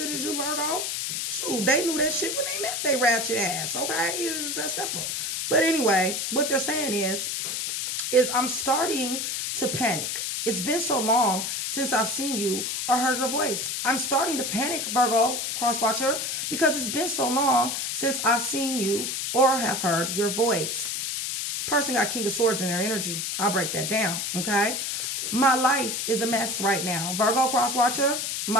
as you, Virgo. Shoot, they knew that shit when they met they ratchet ass, okay? It was just that simple. But anyway, what they're saying is I'm starting to panic. It's been so long since I've seen you or heard your voice. I'm starting to panic, Virgo, cross-watcher, because it's been so long since I've seen you or have heard your voice. Person got King of Swords in their energy. I'll break that down, okay? My life is a mess right now. Virgo, cross-watcher,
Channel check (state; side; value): noise; left; hiss, 2 dB below the sound